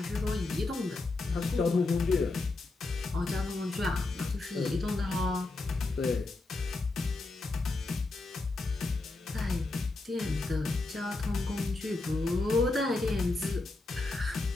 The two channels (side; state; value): right; quieter; 3.2 dB